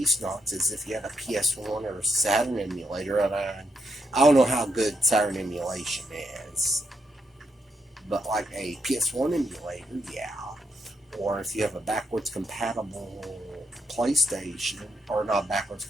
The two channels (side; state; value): both; normal; correlation 0.81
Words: is if you had a PS1 or a Saturn emulator, and I don't know how good Saturn emulation is, but like a PS1 emulator, yeah. Or if you have a backwards compatible PlayStation, or not backwards